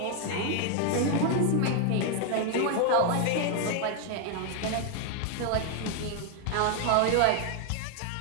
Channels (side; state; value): both; different; correlation 0.00